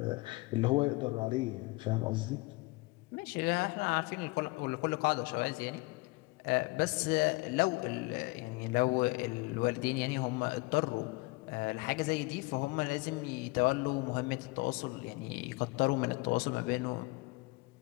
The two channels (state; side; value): quieter; right; 24.0 dB